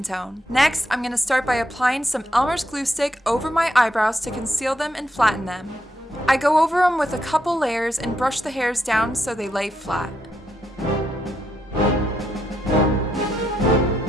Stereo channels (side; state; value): both; normal; correlation 0.79